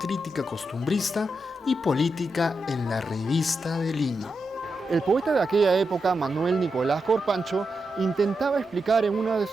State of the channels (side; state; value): both; normal; correlation 0.87